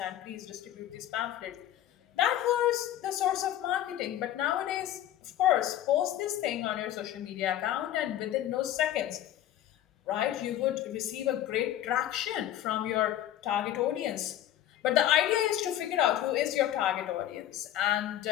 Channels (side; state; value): right; quieter; 12.2 dB